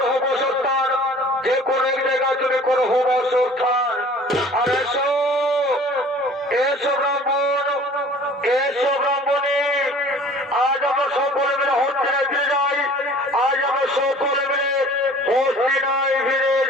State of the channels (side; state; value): both; normal; correlation 0.48